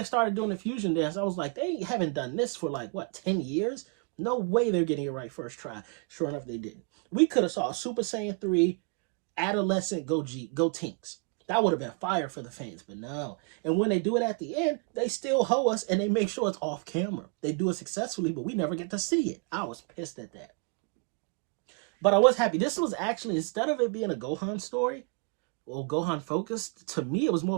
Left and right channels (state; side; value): quieter; left; 34.7 dB